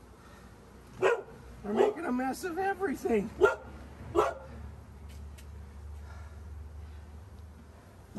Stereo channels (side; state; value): both; identical; correlation 1.00